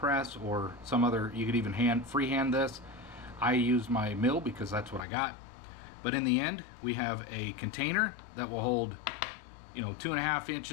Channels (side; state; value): right; drops out; at 5.1 s